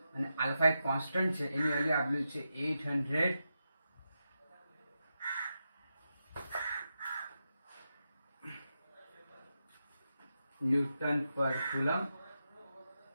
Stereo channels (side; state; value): both; inverted; correlation -0.88